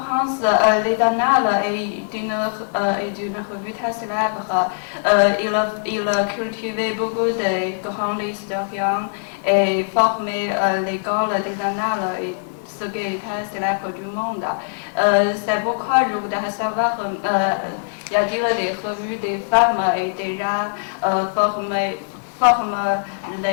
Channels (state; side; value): silent; right; digital silence